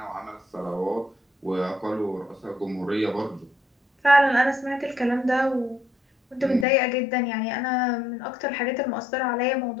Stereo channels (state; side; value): drops out; right; at 6.7 s